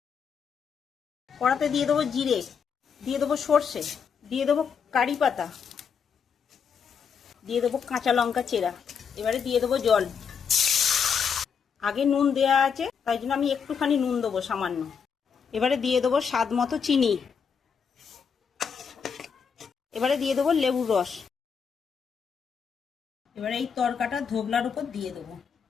কড়াতে দিয়ে দেবো জিরে, দিয়ে দেবো সর্ষে, দিয়ে দেবো কারি পাতা, দিয়ে দেবো কাঁচা লঙ্কা চেরা। এবারে দিয়ে দেবো জল। আগে নুন দেয়া আছে, তাই জন্য আমি একটুখানি নুন দেবো সামান্য। এবারে দিয়ে দেবো স্বাদ মতো চিনি। এবারে দিয়ে দেবো লেবুর রস। এবারে এই তড়কাটা ধোগলার উপর দিয়ে দেবো।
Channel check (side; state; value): right; quieter; 6.6 dB